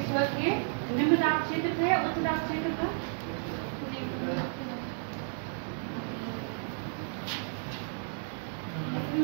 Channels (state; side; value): silent; left; 56 dB below the other